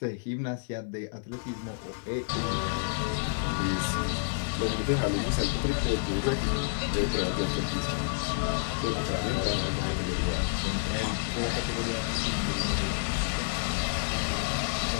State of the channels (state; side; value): silent; right; digital silence